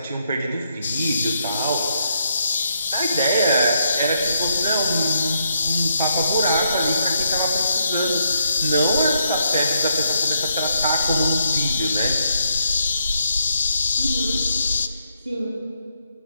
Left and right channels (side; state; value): both; inverted; correlation -0.77